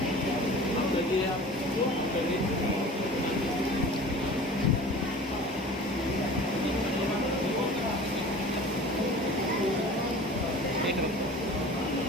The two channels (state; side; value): normal; both; correlation 0.41